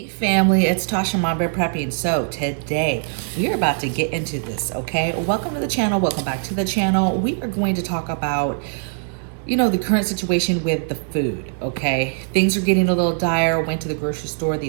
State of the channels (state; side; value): silent; left; 65 dB below the other